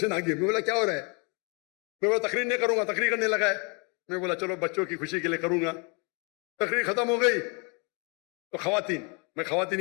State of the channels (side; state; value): right; quieter; 31.5 dB